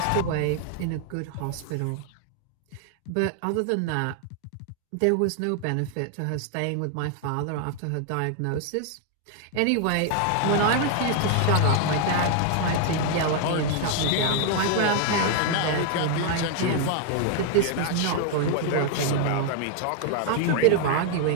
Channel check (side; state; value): both; different; correlation 0.00